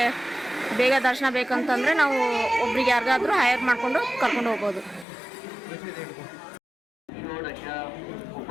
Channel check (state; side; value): drops out; right; at 5.1 s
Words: ಬೇಗ ದರ್ಶನ ಬೇಕಂತಂದರೆ ನಾವು ಒಬ್ರಿಗೆ ಯಾರಿಗಾದರೂ ಹೈರ್ ಮಾಡಿಕೊಂಡು ಕರ್ಕೊಂಡು ಹೋಗ್ಬೋದು.